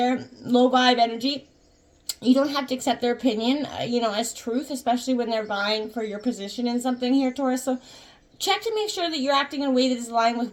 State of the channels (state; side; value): identical; both; correlation 1.00